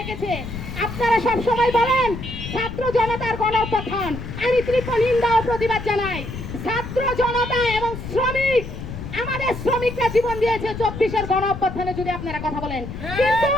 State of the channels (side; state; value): left; noise; rumble, 8 dB below the sound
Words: আপনারা সব সময় বলেন ছাত্র জনতার গণঅভ্যুত্থান, আমি তীব্র নিন্দা ও প্রতিবাদ জানাই। ছাত্র জনতা এবং শ্রমিক, আমাদের শ্রমিকরা জীবন দিয়েছে 24-এর গণঅভ্যুত্থানে, যদি আপনারা কথা বলেন, কিন্তু